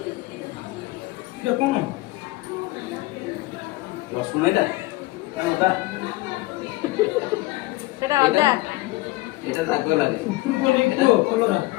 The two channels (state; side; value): quieter; right; 20.0 dB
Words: এটা কোন रसुण एटा ना अदा সেটা আদা एटा राग लागे কোন কো কলরা